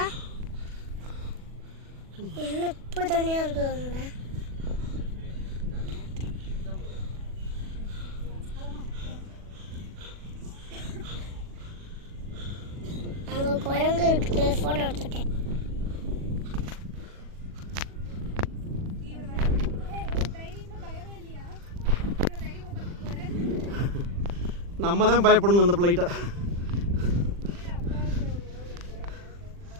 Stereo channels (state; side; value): late; left; 40 ms